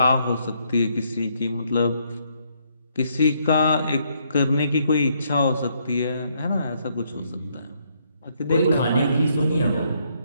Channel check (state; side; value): inverted; both; correlation -0.72